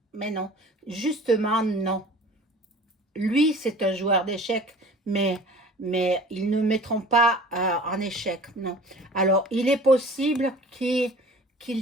justement non. Lui, c'est un joueur d'échecs, mais ils ne mettront pas en échec, non. Alors, il est possible qu'il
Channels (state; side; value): normal; both; correlation 0.44